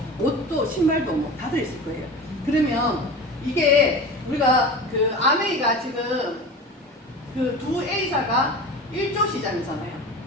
옷도, 신발도 뭐 다 들어있을 거예요. 그러면 이게 우리가 그 아메이가 지금 그 두 A사가 1조 시장이잖아요.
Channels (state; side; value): normal; both; correlation 0.33